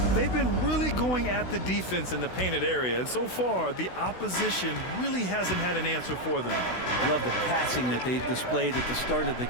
They've been really going at the defense in the painted area, and so far the opposition really hasn't had an answer for them. Love the passing that they displayed at the start of the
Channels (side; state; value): right; late; 16 ms